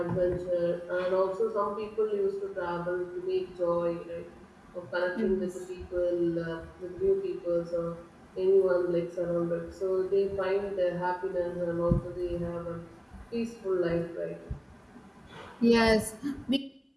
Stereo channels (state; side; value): identical; both; correlation 1.00